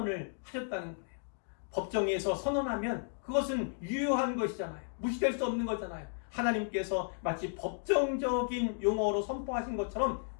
하셨다는 거예요. 법정에서 선언하면 그것은 유효한 것이잖아요. 무시될 수 없는 거잖아요. 하나님께서 마치 법정적인 용어로 선포하신 것처럼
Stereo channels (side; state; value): right; silent; digital silence